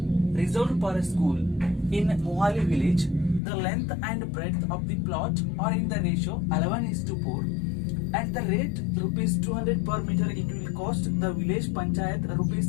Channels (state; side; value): drops out; right; at 3.4 s